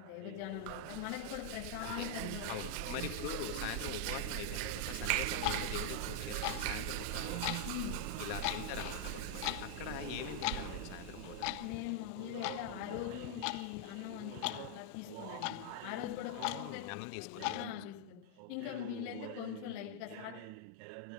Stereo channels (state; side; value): different; both; correlation 0.00